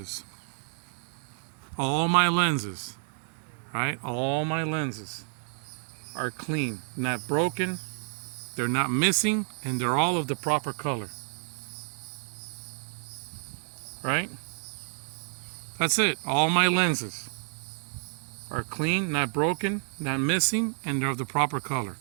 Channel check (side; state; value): left; silent; 58 dB below the other